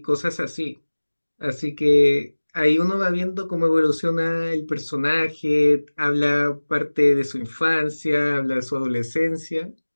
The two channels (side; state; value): both; inverted; correlation -1.00